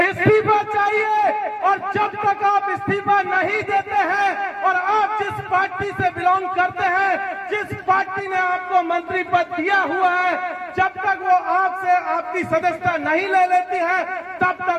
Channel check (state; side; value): identical; both; correlation 1.00